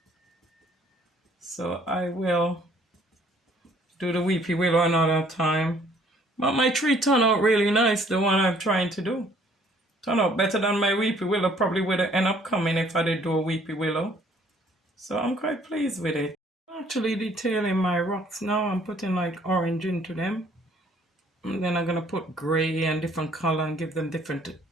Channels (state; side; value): normal; both; correlation 0.60